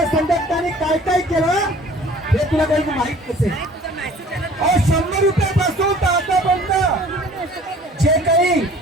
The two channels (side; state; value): both; normal; correlation 0.50